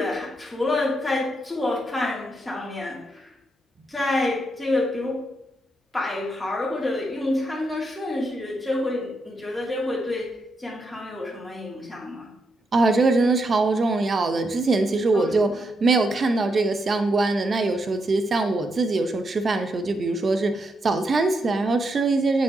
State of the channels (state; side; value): normal; both; correlation 0.81